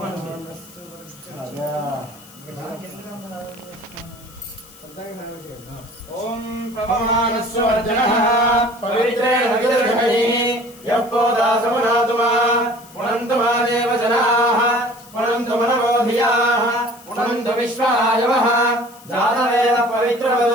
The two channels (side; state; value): left; noise; hiss, 22 dB below the sound